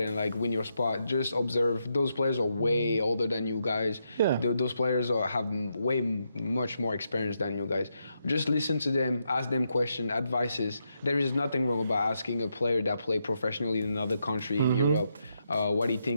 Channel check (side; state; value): both; inverted; correlation -0.82